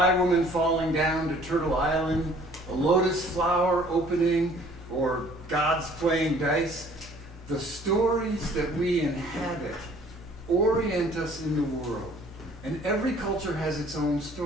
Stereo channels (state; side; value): normal; both; correlation 0.55